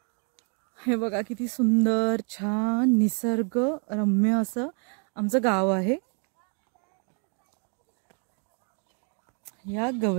हे बघा किती सुंदर छान निसर्ग रम्य असं आमचं गाव आहे. या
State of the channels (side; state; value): left; quieter; 39.5 dB